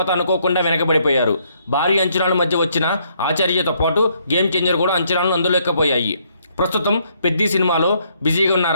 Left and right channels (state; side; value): inverted; both; correlation -0.70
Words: అనుకోకుండా వెనకబడిపోయారు. భారీ అంచనాల మధ్య వచ్చిన ఆచార్యతో పాటు గేమ్ చేంజర్ కూడా అంచనాలను అందులేకపోయాయి. ప్రస్తుతం పెద్ది సినిమాలో బిజీగా